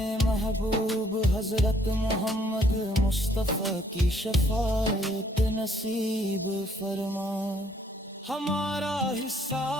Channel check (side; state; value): both; normal; correlation 0.65